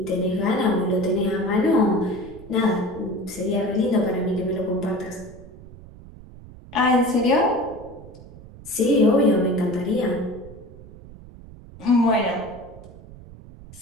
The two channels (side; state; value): right; noise; rumble, 18 dB below the sound